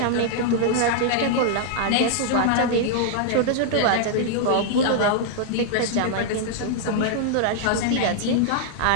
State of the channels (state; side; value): different; both; correlation -0.01